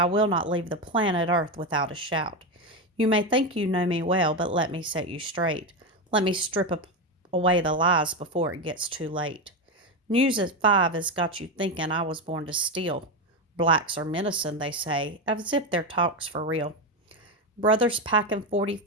will not leave the planet Earth without a shout. You may think you know me well, but let me set you straight. Let me strip away the lies before it gets too late. News at 5 has got you thinking I was born to steal. Blacks are menacing, they say, as if their talk's for real. Brothers packing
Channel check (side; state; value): both; normal; correlation 0.13